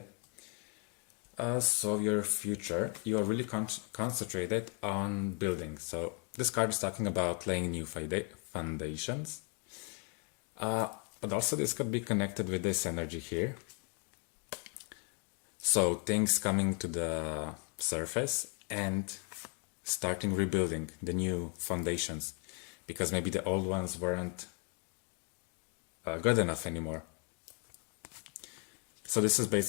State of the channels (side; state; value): right; quieter; 38.1 dB